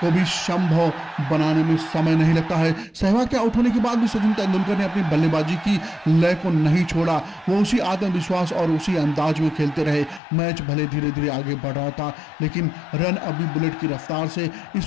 को भी संभव बनाने में समय नहीं लगता है। सहवाग के आउट होने के बाद भी सचिन तेंदुलकर ने अपनी बल्लेबाजी की लय को नहीं छोड़ा। वो उसी आत्मविश्वास और उसी अंदाज में खेलते रहे। मैच भले धीरे धीरे आगे बढ़ रहा था, लेकिन रन अभी बुलेट की रफ्तार से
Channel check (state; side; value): drops out; right; at 10.2 s